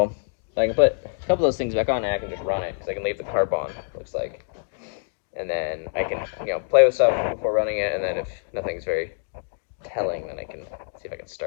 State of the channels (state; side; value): silent; right; digital silence